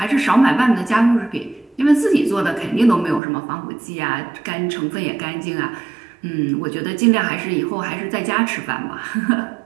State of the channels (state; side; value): drops out; left; at 3.2 s